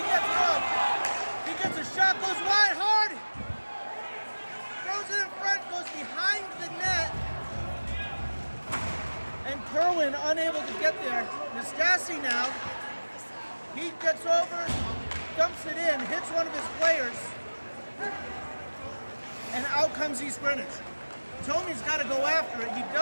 gets it up. He gets a shot, goes wide, hard. Throws it in front, goes behind the net. And Kerwin unable to get there. Nastasi now. He gets over, dumps it in, hits one of his players. And out comes East Greenwich. Tomey's got to go after it. He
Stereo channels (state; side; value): inverted; both; correlation -1.00